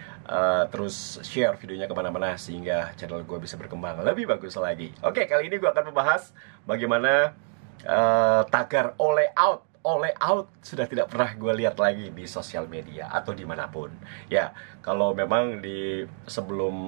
terus share videonya kemana-mana sehingga channel gue bisa berkembang lebih bagus lagi. Oke, kali ini gue akan membahas bagaimana tagar all out sudah tidak pernah gue lihat lagi di sosial media atau dimanapun. Ya, kalau memang di sebelum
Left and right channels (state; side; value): silent; left; digital silence